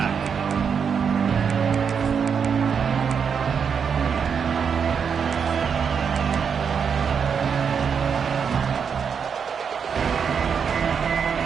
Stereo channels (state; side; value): quieter; left; 6.7 dB